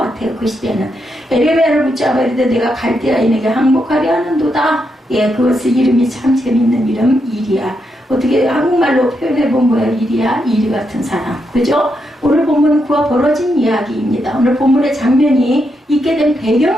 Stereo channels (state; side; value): normal; both; correlation 0.82